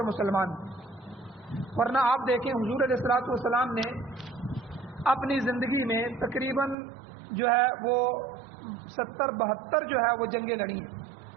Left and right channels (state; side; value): drops out; left; at 6.8 s